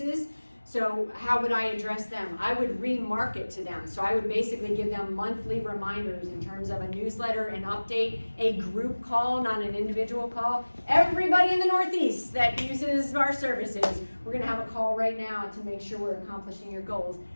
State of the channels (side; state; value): both; inverted; correlation -1.00